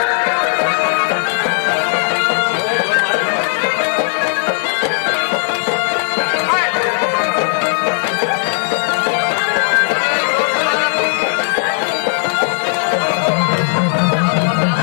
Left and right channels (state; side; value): silent; right; digital silence